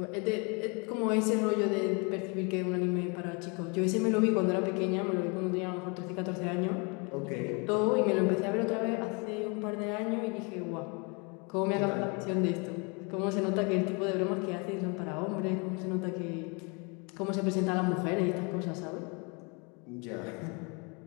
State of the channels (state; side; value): quieter; right; 31.9 dB